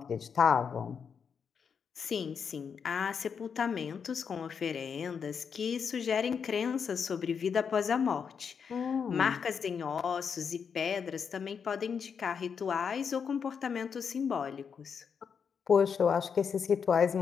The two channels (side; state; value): right; quieter; 6.6 dB